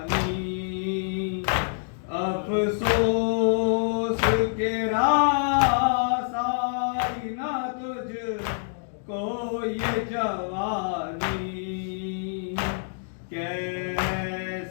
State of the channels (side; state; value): right; silent; digital silence